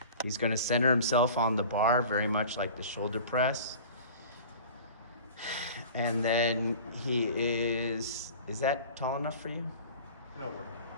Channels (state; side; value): inverted; both; correlation -0.40